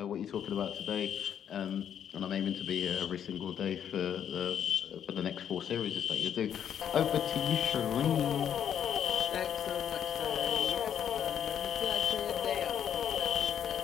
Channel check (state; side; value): quieter; right; 9.1 dB